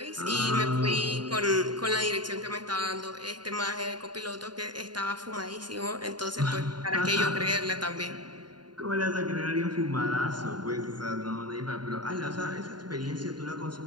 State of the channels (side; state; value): left; late; 0.70 ms